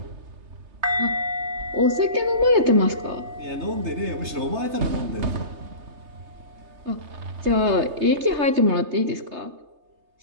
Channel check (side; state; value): left; late; 3.3 ms